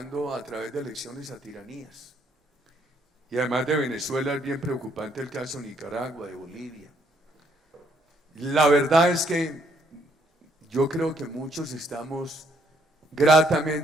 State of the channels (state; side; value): normal; both; correlation 0.69